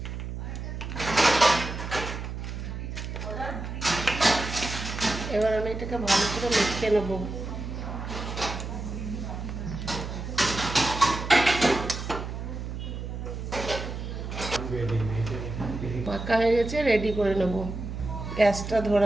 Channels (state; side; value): noise; right; hum, 6 dB below the sound